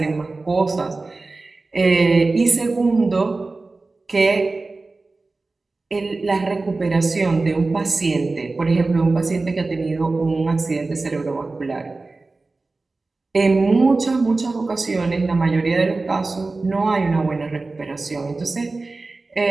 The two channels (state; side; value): quieter; left; 3.5 dB